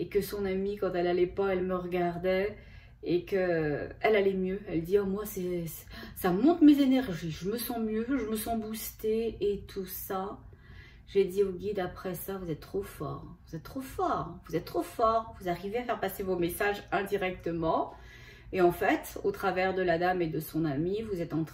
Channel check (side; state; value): both; identical; correlation 1.00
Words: que son amie, quand elle allait pas, elle me regardait et que elle allait mieux. Elle dit, oh, moi ça monte mes énergies, je me sens mieux, je me sens boostée et tout ça. J'ai dit au guide après ça, vous êtes trop fort, vous êtes trop fort, vous êtes trop fort, vous arrivez à faire passer vos messages indirectement. Et en fait, au travers de la dame et de son ami, vous êtes en